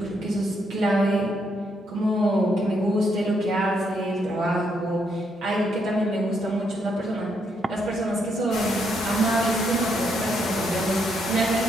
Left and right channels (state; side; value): normal; both; correlation 0.76